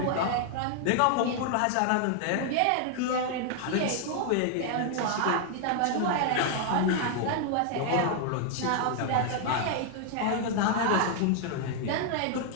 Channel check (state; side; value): different; both; correlation 0.00